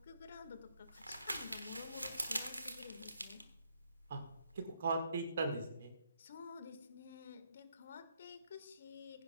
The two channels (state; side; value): inverted; both; correlation -0.74